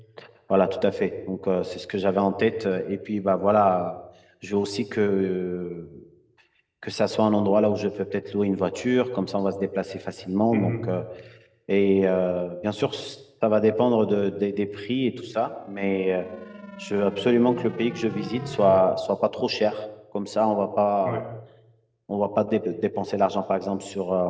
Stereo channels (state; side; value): identical; both; correlation 1.00